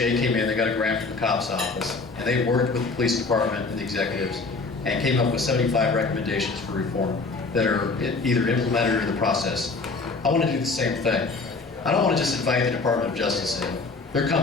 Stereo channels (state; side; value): quieter; right; 3.9 dB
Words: came in, they got a grant from the COPS office, and they worked with the police department and the executives and came up with 75 recommendations for reform that are either implemented or in the process. I want to do the same thing. I don't want to just invite the Department of Justice in. They're